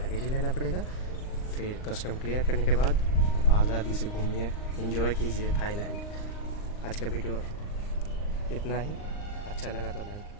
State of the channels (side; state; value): right; late; 39 ms